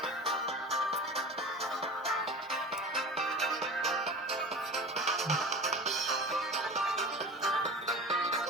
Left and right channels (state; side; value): normal; both; correlation 0.34